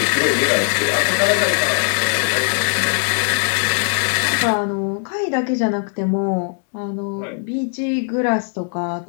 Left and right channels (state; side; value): silent; right; 62 dB below the other